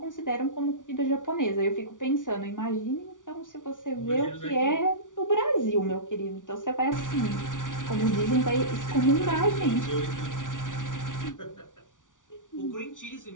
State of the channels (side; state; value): right; late; 0.87 ms